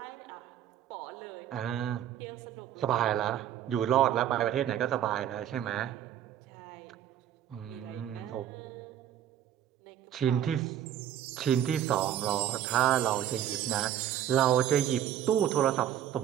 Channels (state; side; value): quieter; left; 10.7 dB